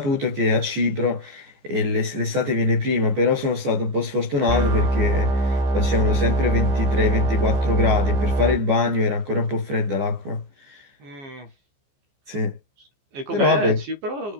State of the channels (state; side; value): late; left; 15 ms